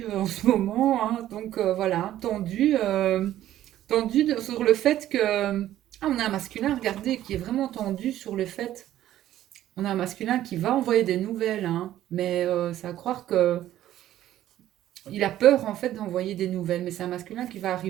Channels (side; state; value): left; quieter; 12.9 dB